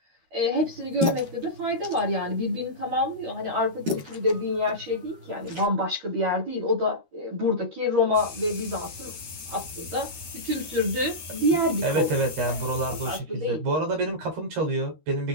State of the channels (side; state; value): left; late; 13 ms